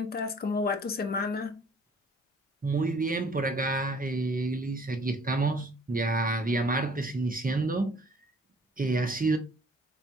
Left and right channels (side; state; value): both; normal; correlation 0.56